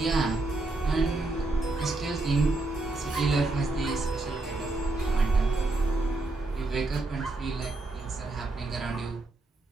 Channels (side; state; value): left; quieter; 3.1 dB